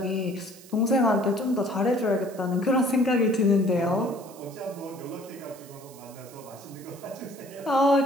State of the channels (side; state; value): right; noise; hiss, 21 dB below the sound